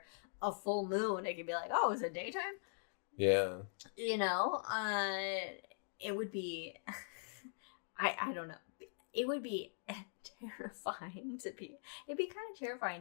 a full moon, it could be like, oh, is it daytime? Yeah. It would be, I don't know. It would be terrifying it'd be kind of terrifying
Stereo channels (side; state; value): right; silent; digital silence